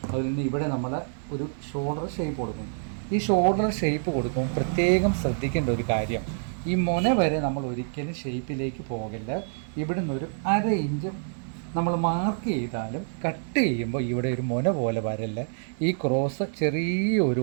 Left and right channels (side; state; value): left; silent; digital silence